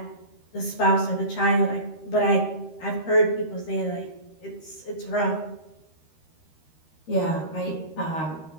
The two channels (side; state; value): right; late; 13 ms